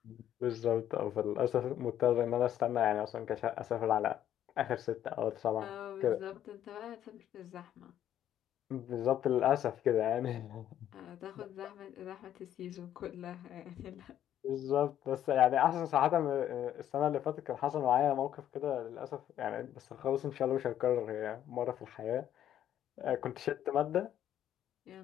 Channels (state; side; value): quieter; right; 11.0 dB